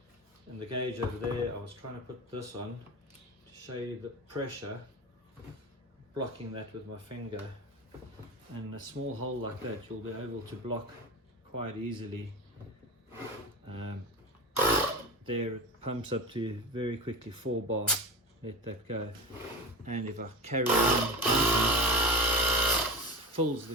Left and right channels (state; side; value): normal; both; correlation 0.26